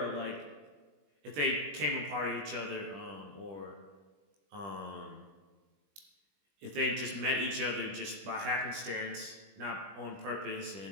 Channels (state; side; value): late; left; 20 ms